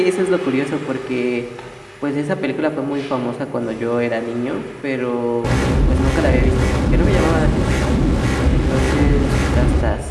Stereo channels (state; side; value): identical; both; correlation 1.00